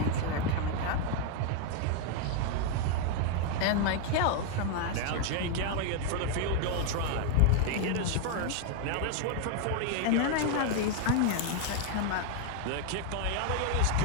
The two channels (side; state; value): both; different; correlation 0.01